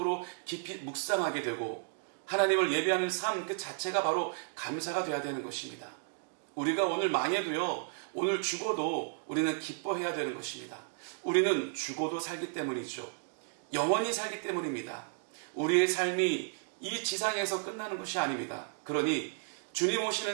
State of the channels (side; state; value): left; silent; digital silence